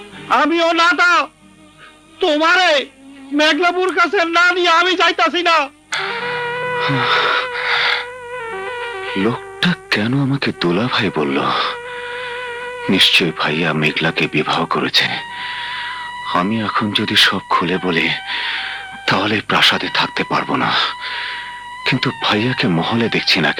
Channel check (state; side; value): identical; both; correlation 1.00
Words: আমিও না তা তোমারে মেঘলাপুর কাছে না নিয়ে আমি যাইতাছি না। লোকটা কেন আমাকে দোলা ভাই বলল? নিশ্চয় ভাইয়া মেঘলাকে বিবাহ করেছে। আমি এখন যদি সব খুলে বলি তাহলে প্রাসাদে থাকতে পারবো না। কিন্তু ভাইয়াকে মহলে দেখছি না